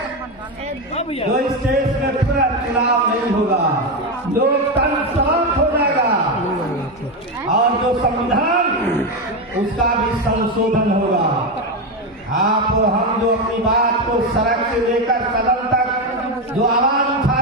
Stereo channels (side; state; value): both; normal; correlation 0.11